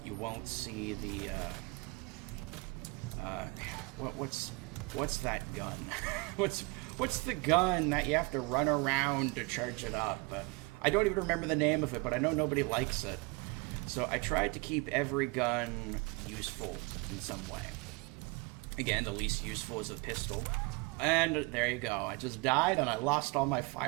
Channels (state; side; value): quieter; left; 27.9 dB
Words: You won't see the what's that gun? what's the gun that you have to run around to charge it up? I don't even remember the name of it, but I know nobody likes it. So I tried to keep every gun useful in some way. Again, the least useful is a pistol. And there you go. I just died and I lost all my